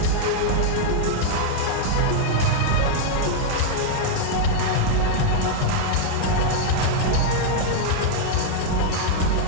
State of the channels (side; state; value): both; different; correlation -0.01